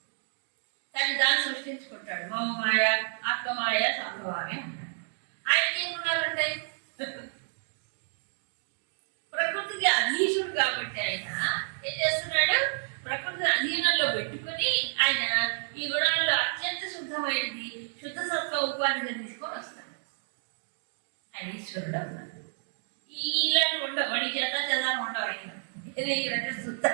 తను దాన్ని సృష్టించుకుంటాడు. మమమాయ, ఆత్మమాయ, సంభవామి అంటాడు. ఆయనకి ఏం గుణాలు ఉంటాయి? ప్రకృతికి అధీశుడు కాబట్టి ఆయన ఏం చేస్తున్నాడు? ప్రకృతిని అధీనంలో పెట్టుకుని ఆయన ఈ గుణాల్లో అత్యంత శుద్ధమైనది, శుద్ధ సత్వ ఉపాధిగా తీసుకొని వస్తాడు. ఆయన ఈశ్వరుడు అన్నాడు. ఇలాంటి ఉండవు, వాడి చేత ఉండవు. ఆయన శుద్ధ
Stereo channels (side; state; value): left; silent; digital silence